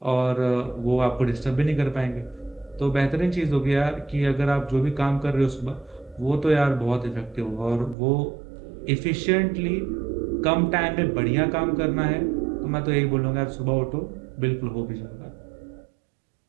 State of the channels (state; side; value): drops out; left; at 8.0 s